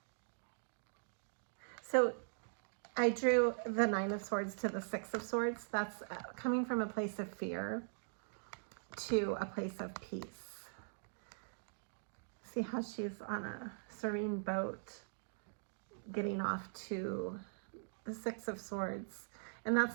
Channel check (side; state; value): left; silent; digital silence